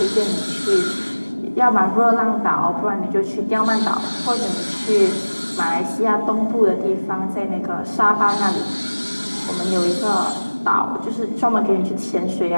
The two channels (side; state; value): both; inverted; correlation -1.00